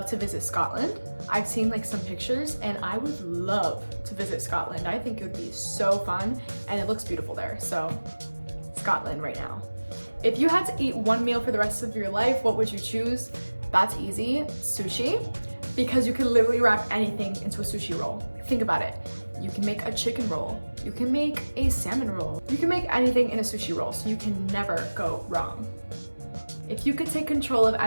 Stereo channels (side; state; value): both; inverted; correlation -1.00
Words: to visit Scotland. I've seen like some pictures and I would love to visit Scotland. I think it would be so fun and it looks beautiful there. So Scotland right now. If you had to eat one meal for the rest of your life, what would you choose? That's easy, sushi, because you can literally wrap anything into a sushi roll. Think about it. You can make a chicken roll. You can make a salmon roll. You can make anything in a sushi roll, so you can never go wrong. If you could take control of